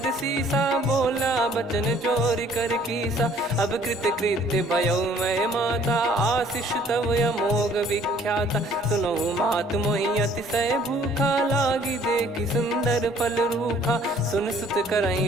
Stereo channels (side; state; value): both; normal; correlation 0.57